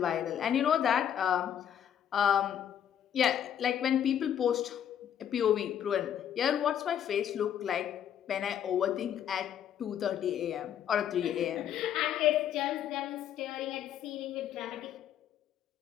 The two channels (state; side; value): quieter; right; 9.6 dB